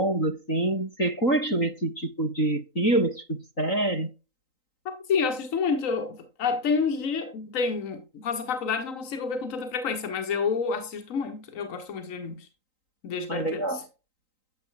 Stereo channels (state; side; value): late; right; 3.9 ms